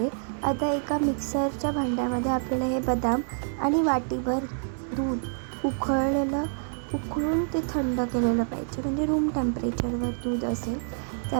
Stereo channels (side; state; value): left; silent; digital silence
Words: आता एका मिक्सरच्या भांड्यामध्ये आपल्याला हे बदाम आणि वाटीभर दूध उकळून ते थंड केलेलं पाहिजे, म्हणजे रूम टेम्परेचरवर दूध असेल ते